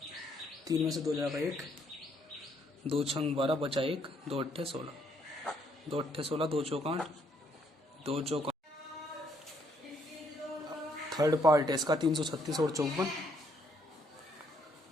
3 में से 2 जाएगा 1, 2 छंग 12 बचा 1, 2 अट्ठे 16, 2 अट्ठे 16, 2 चौक 8, 2 चौक। थर्ड पार्ट है इसका 336 और 54।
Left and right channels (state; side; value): normal; both; correlation 0.70